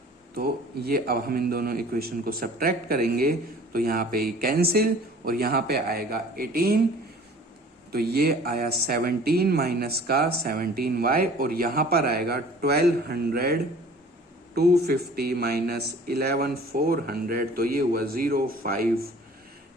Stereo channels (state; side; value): normal; both; correlation 0.48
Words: तो ये अब हम इन दोनों इक्वेशन को सब्ट्रैक्ट करेंगे तो यहाँ पे कैंसिल और यहाँ पे आएगा 18। तो ये आया 17 माइनस का 17y और यहां पर आएगा 1200 250 माइनस 11 400, तो ये हुआ 05